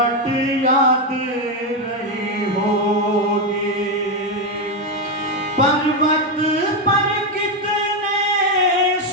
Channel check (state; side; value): normal; both; correlation 0.06